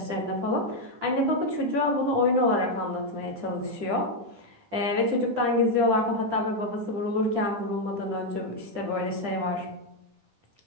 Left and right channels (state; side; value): late; left; 10 ms